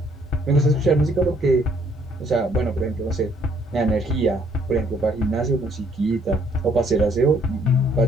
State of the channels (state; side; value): normal; both; correlation 0.65